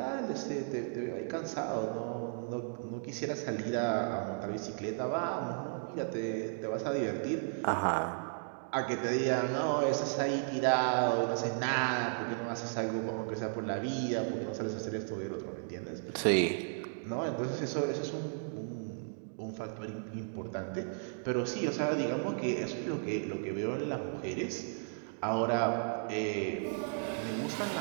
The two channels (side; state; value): left; silent; digital silence